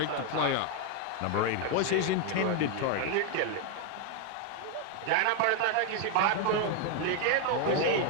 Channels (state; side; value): different; both; correlation 0.01